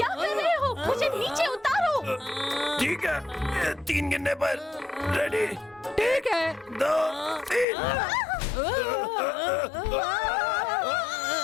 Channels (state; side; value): drops out; right; at 7.7 s